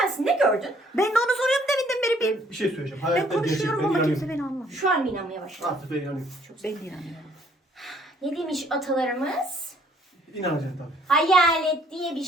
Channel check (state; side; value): normal; both; correlation 0.62